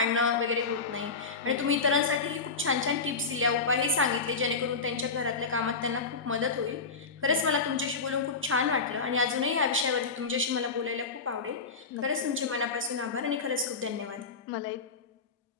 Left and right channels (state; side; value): quieter; right; 4.5 dB